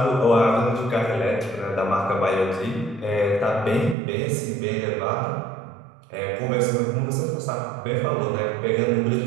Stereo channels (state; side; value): drops out; left; at 4.0 s